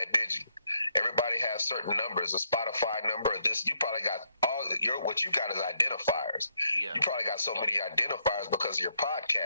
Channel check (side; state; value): both; inverted; correlation -0.76